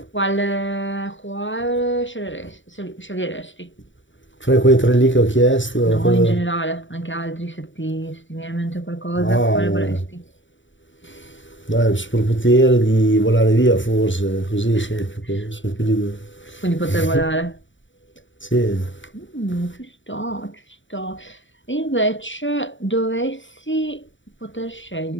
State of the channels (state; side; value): late; right; 0.55 ms